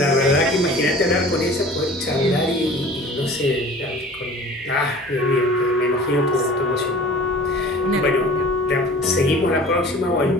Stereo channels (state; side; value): normal; both; correlation 0.44